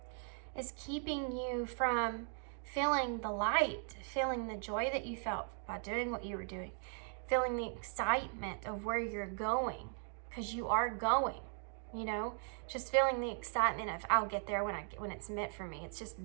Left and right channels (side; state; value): left; silent; 52 dB below the other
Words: is keeping you from feeling the light, feeling the joy that you felt by doing what you were doing, feeling the excitement of where you're going, because you are going, you know, just feeling the excitement of I'll get there when it's meant for me. It's just